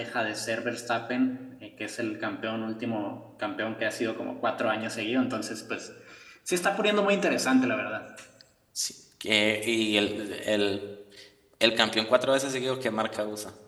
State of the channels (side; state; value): both; identical; correlation 1.00